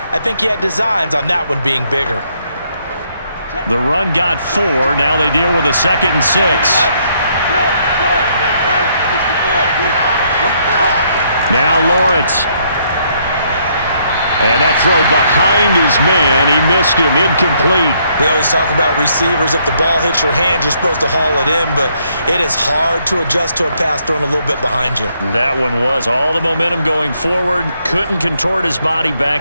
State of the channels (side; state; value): both; inverted; correlation -0.71